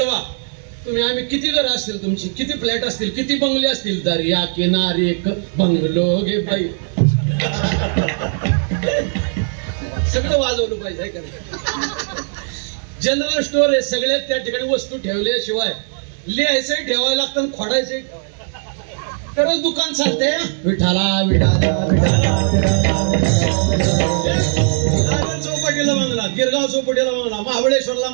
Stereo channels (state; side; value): silent; left; 64 dB below the other